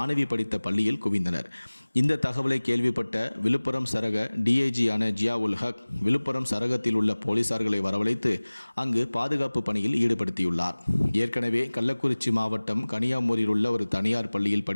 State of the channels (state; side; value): inverted; both; correlation -1.00